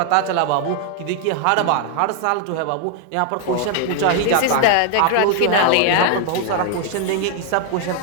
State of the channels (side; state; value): both; different; correlation 0.00